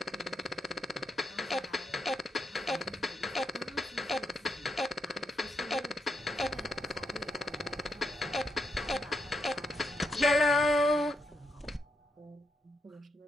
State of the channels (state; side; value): normal; both; correlation 0.81